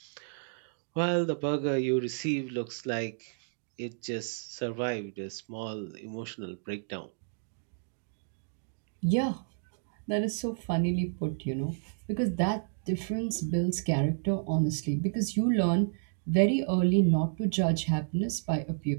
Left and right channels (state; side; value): silent; left; digital silence